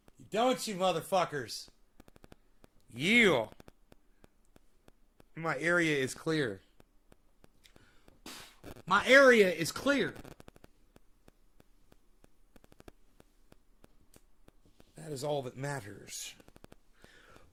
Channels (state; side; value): identical; both; correlation 1.00